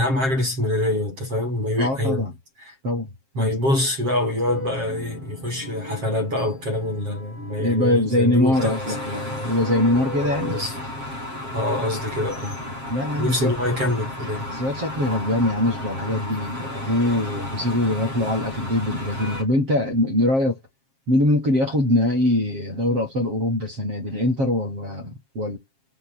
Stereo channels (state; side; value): late; left; 7.5 ms